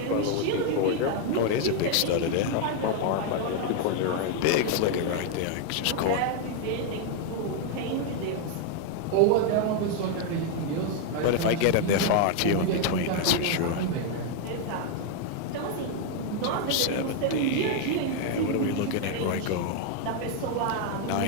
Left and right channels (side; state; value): both; different; correlation 0.01